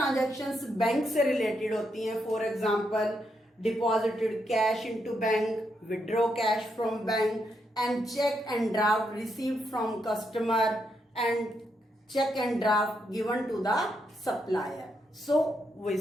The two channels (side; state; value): both; normal; correlation 0.80